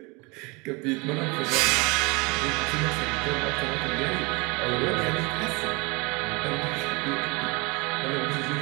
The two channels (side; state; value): left; quieter; 27.5 dB